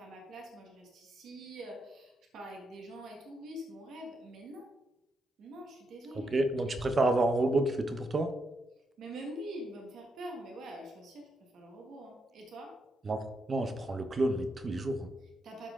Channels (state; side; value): normal; both; correlation 0.82